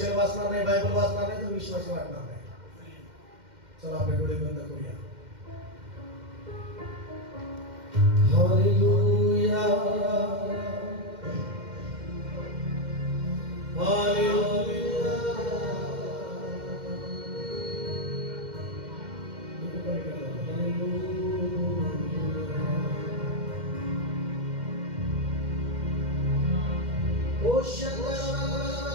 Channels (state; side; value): late; left; 2.1 ms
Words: वाचणार नाही, बायबल वाचणार नाही तर विश्वास वाढणार नाही. चला आपले डोळे बंद करूया. हालेलुया. हालेलुया. ओ शंकर